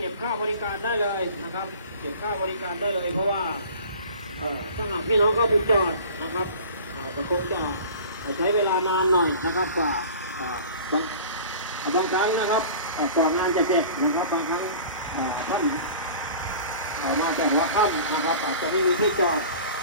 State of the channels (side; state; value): both; inverted; correlation -0.42